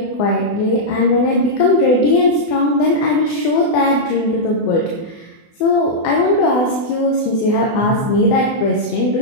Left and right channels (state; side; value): late; right; 24 ms